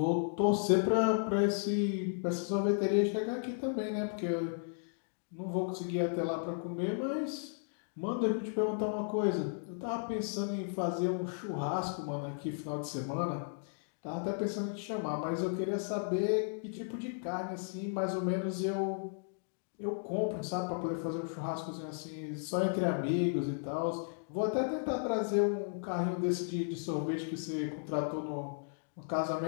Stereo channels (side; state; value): right; silent; digital silence